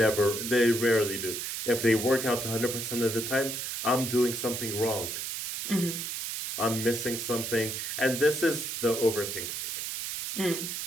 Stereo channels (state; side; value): noise; right; hiss, 4 dB below the sound